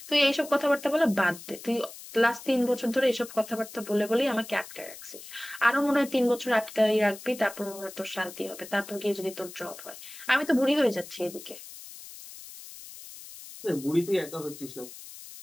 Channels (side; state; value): left; noise; hiss, 15 dB below the sound